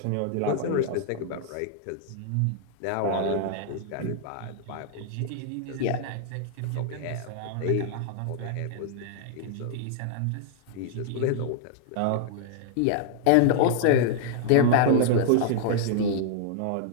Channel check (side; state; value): both; different; correlation -0.01